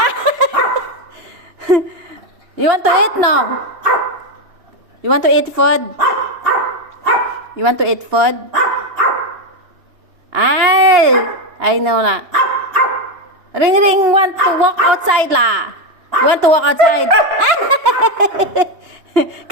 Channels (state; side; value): late; left; 2.9 ms